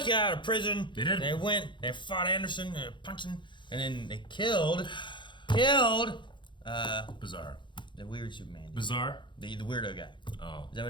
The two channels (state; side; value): late; right; 0.23 ms